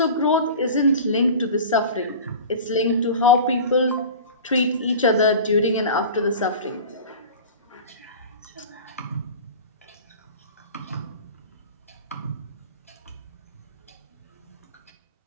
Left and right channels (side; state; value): both; inverted; correlation -0.36